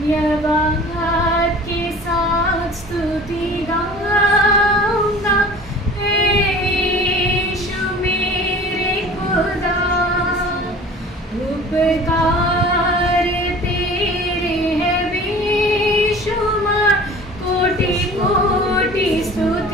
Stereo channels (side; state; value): both; normal; correlation 0.44